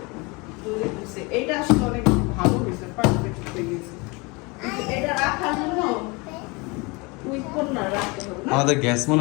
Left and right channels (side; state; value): right; quieter; 27.0 dB